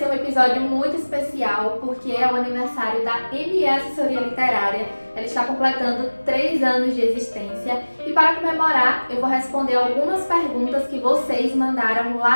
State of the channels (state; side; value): inverted; both; correlation -1.00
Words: um episódio muito especial porque é o aniversário da ME Assessoria Literária. Ela está completando 3 anos de existência e para comemorar eu vou responder algumas perguntas que vocês mandaram